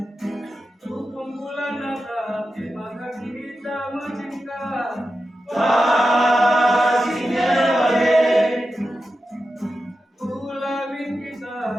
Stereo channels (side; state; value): both; normal; correlation 0.91